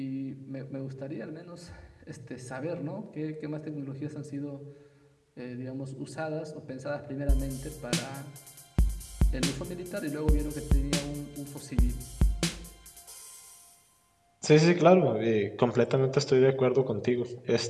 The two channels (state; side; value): identical; both; correlation 1.00